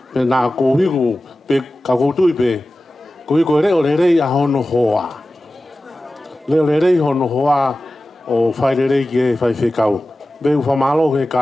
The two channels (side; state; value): both; normal; correlation 0.95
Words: Pe na ko hi ko pe ka ko tu pe. Ko ko re o re a hono hoa. Le re hono hoa o fa re ke fa fe kau. Be fa malo ke